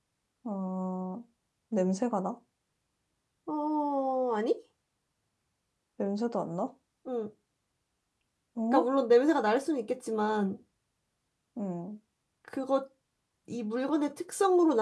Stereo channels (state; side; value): identical; both; correlation 1.00